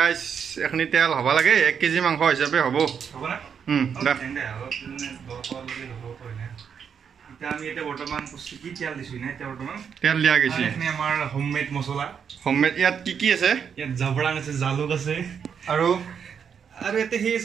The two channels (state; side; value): quieter; left; 7.2 dB